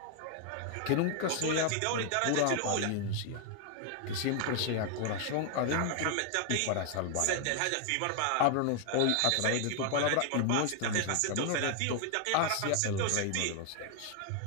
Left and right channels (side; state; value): both; different; correlation 0.00